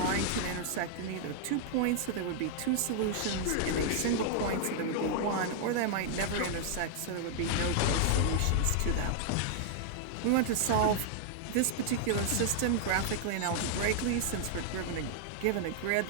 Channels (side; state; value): both; different; correlation -0.01